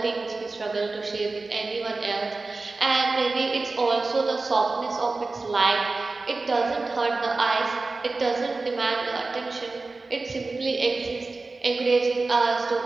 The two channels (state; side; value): quieter; left; 3.6 dB